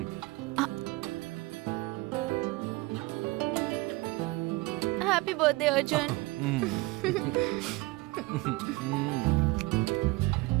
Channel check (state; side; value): quieter; left; 22.4 dB